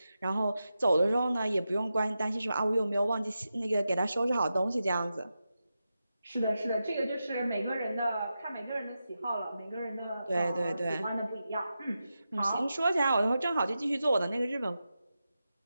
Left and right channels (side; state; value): both; inverted; correlation -0.90